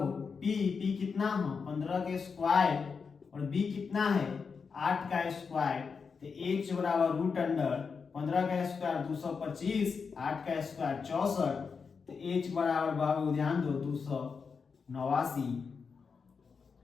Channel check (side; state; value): right; quieter; 5.5 dB